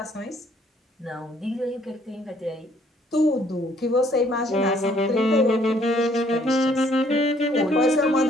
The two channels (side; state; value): both; normal; correlation 0.63